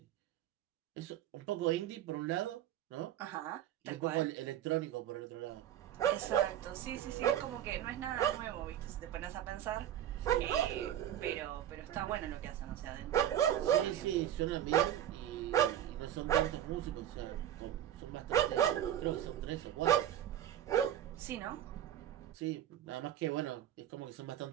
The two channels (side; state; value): left; quieter; 11.4 dB